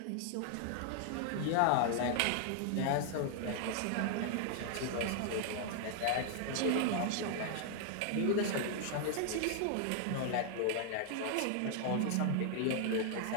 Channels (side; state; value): both; different; correlation 0.00